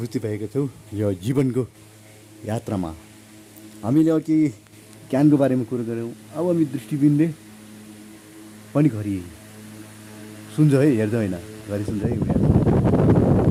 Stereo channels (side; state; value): both; identical; correlation 1.00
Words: भएको छु यो जीवनको यात्रामा। हामीले अघि ज्ञानको बारेमा कुरो गऱ्यौँ। अब हामी दृष्टिबिनले पनि घरि सुन्छ है, हेर्छ होइन, घरि सुन्छ है।